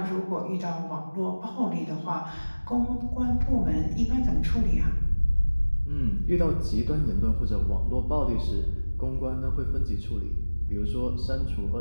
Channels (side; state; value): both; inverted; correlation -1.00